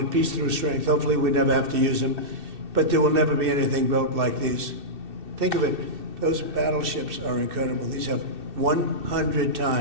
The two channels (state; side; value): late; left; 2.6 ms